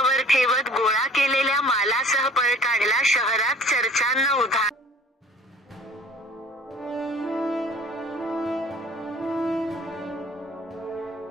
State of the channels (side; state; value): both; normal; correlation 0.49